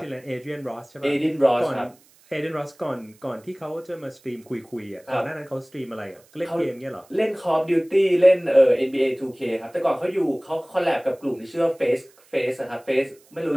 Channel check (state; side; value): noise; right; hiss, 30 dB below the sound